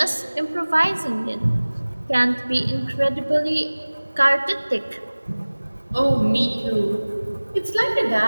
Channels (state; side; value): inverted; both; correlation -1.00